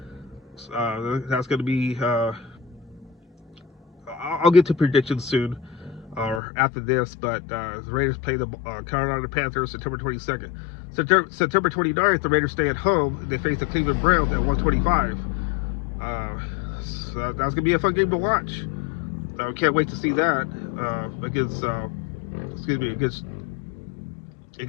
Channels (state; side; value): drops out; right; at 6.4 s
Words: That's going to be, I'll get to predictions soon or after this, but the Raiders play the Carolina Panthers September 22nd. September 29th, the Raiders stay at home and they face the Cleveland Browns at 1:25. So that's going to be a fun game to watch. Can't wait to see that